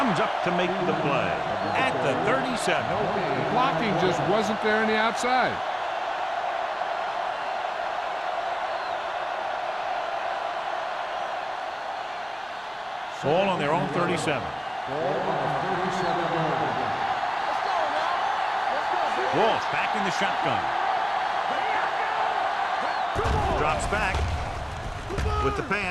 up to make the play at the 37. The blocking just wasn't there on the outside. Ball on their own 37. Ball on the 37-yard line. Walsh back in the shotgun. Drops back with the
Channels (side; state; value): both; identical; correlation 1.00